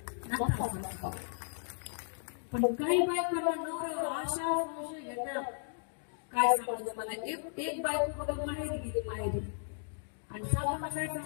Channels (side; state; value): right; silent; digital silence